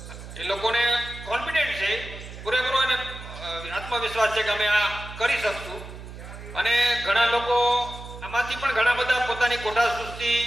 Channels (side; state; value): right; noise; hum, 13 dB below the sound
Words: એ લોકોને કોન્ફિડન્ટ છે, પૂરેપૂરો એને આત્મવિશ્વાસ છે કે અમે આ કરી શકશું. અને ઘણા લોકો આમાંથી પણ ઘણા બધા પોતાની કોઠા સૃષ્ટિ